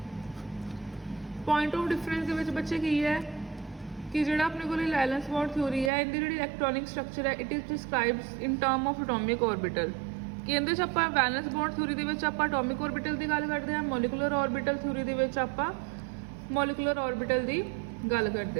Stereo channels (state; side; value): drops out; left; at 5.9 s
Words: point of difference ਦੇ ਵਿੱਚ ਬੱਚੇ ਕੀ ਹੈ ਕਿ ਜਿਹੜਾ ਆਪਣੇ ਕੋਲੇ ਵੈਲੈਂਸ ਬੌਂਡ ਥਿਊਰੀ ਹੈ, ਇਹਦੀ ਜਿਹੜੀ ਇਲੈਕਟ੍ਰੋਨਿਕ ਸਟਰਕਚਰ ਹੈ, it is ਡਿਸਕ੍ਰਾਈਬਸ in term of atomic orbital. ਕਿ ਇਹਦੇ 'ਚ ਆਪਾਂ ਵੈਲੈਂਸ ਬੌਂਡ ਥਿਊਰੀ ਦੇ ਵਿੱਚ ਆਪਾਂ ਐਟੋਮਿਕ ਆਰਬਿਟਲ ਦੀ ਗੱਲ ਕਰਦੇ ਹਾਂ, ਮੋਲੀਕੂਲਰ ਆਰਬਿਟਲ ਥਿਊਰੀ ਦੇ ਵਿੱਚ ਆਪਾਂ ਮੋਲੀਕੂਲਰ ਆਰਬਿਟਲ ਦੀ ਗੱਲ